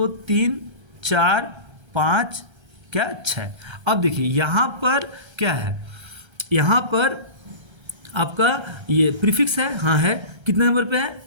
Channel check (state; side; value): late; left; 1.3 ms